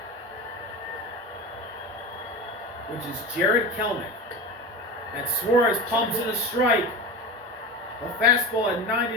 Which is Jared Kelnick. And Suarez pumps in a strike. A fastball at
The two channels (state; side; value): normal; both; correlation 0.27